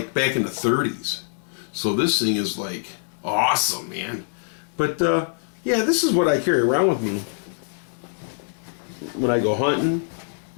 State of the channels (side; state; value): right; silent; digital silence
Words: back in the 30s. So this thing is like awesome, man. But, yeah, this is what I carry around with me. when I go hunting